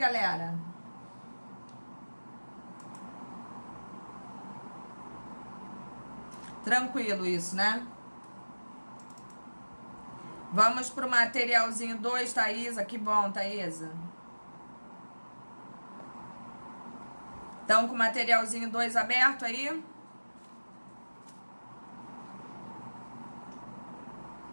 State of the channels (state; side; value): inverted; both; correlation -1.00